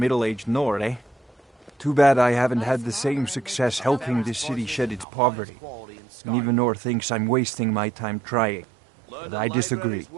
Nord, eh? Too bad I haven't had the same success helping this city shed its poverty. And even Nord thinks I'm wasting my time trying. But I disagree.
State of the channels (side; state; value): left; drops out; at 5.1 s